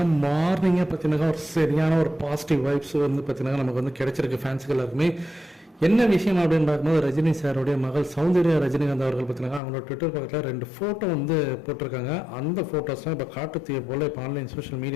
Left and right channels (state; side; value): drops out; right; at 9.6 s